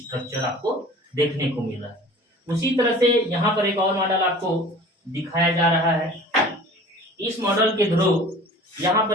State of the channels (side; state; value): both; normal; correlation 0.44